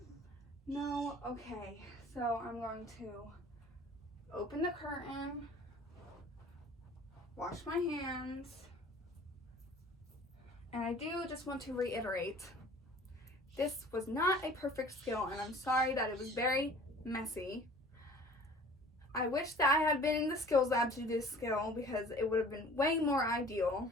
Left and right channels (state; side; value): normal; both; correlation 0.47